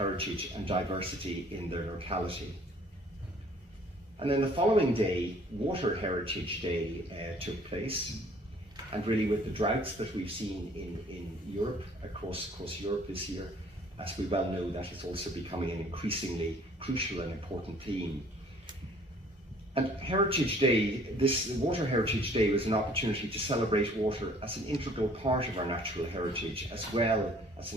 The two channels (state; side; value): normal; both; correlation 0.56